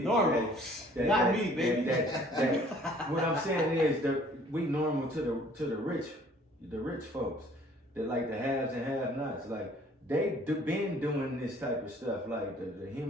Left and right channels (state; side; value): normal; both; correlation 0.56